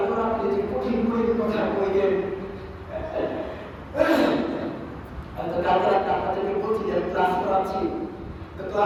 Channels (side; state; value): both; identical; correlation 1.00